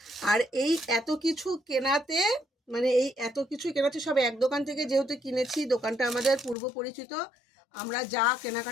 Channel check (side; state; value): right; drops out; at 6.6 s